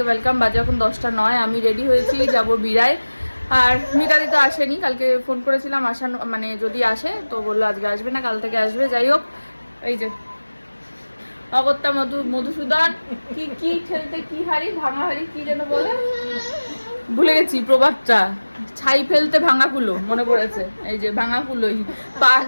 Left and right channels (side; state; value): both; inverted; correlation -1.00